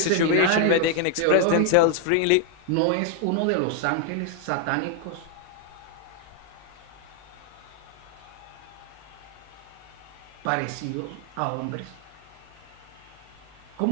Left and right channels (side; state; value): both; different; correlation 0.00